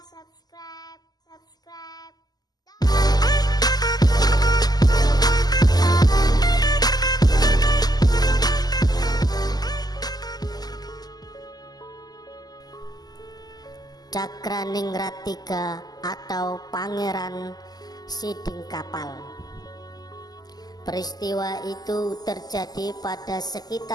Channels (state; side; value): late; right; 0.19 ms